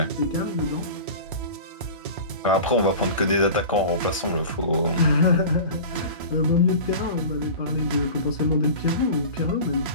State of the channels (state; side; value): inverted; both; correlation -0.35